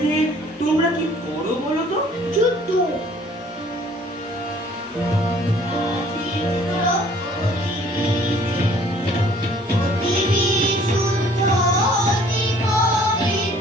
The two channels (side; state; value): both; normal; correlation 0.56